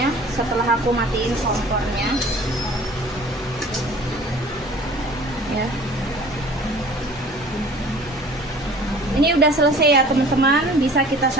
setelah aku matiin kompornya. Ya. Ini udah selesai ya teman-teman, bisa kita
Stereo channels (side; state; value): both; normal; correlation 0.47